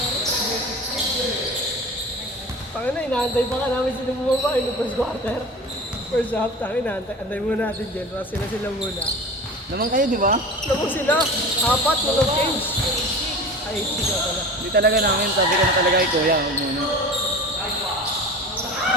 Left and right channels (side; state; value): both; normal; correlation 0.35